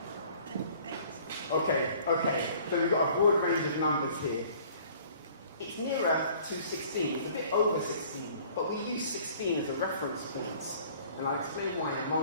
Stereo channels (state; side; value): inverted; both; correlation -0.53